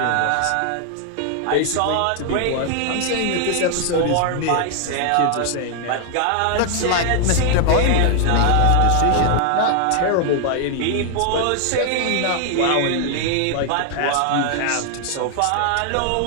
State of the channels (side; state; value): both; different; correlation 0.00